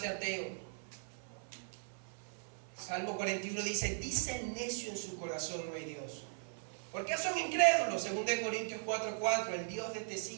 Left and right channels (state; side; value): silent; left; 52 dB below the other